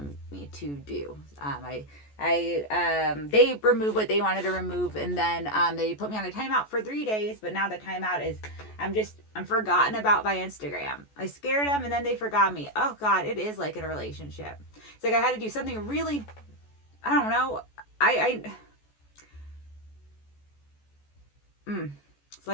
me to do. They removed what they wanted to remove, and then they put me on a timeout for 3 days. But now the timeout is I'm forgotten about by Instagram. I scared them, and then they forgot me. Oh God, it is like in a relationship. It's like I had to do something really, I don't know. It's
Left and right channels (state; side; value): late; right; 14 ms